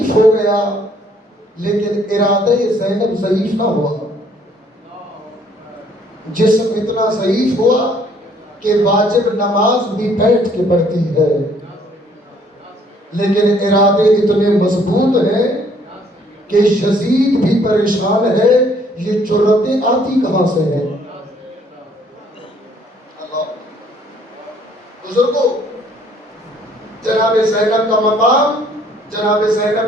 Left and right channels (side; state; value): both; normal; correlation 0.62